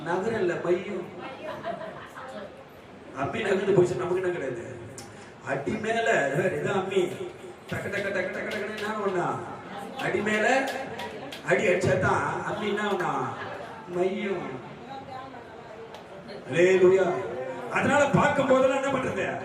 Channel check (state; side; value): identical; both; correlation 1.00